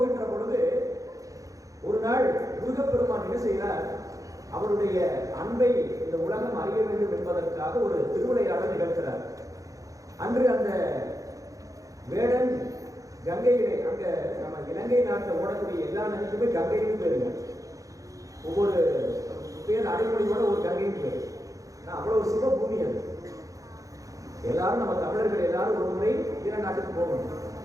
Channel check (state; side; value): late; left; 0.16 ms